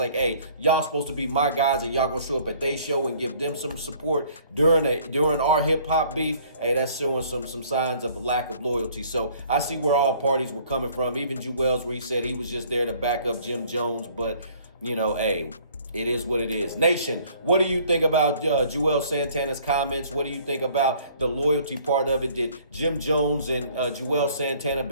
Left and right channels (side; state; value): both; inverted; correlation -0.57